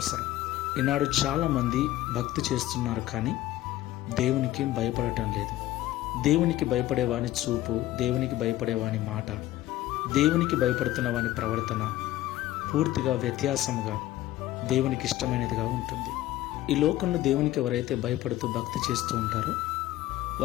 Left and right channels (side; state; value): right; quieter; 15.0 dB